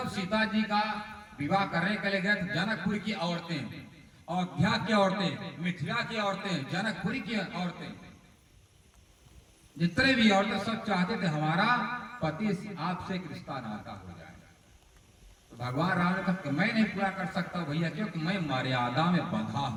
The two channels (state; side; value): identical; both; correlation 1.00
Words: सीता जी का विवाह करने के लिए गए थे, जनकपुर की औरतें, अयोध्या की औरतें, मिथिला की औरतें, जनकपुरी की औरतें, जितने भी औरतें सब चाहते थे हमारा पति आपसे एक रिश्ता नाता हो जाए। तो भगवान राम ने कहा मैं नहीं पूरा कर सकता भैया, क्योंकि मैं मर्यादा में बंधा